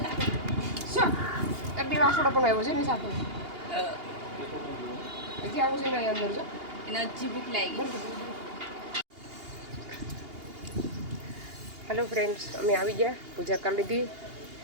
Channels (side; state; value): left; late; 2.8 ms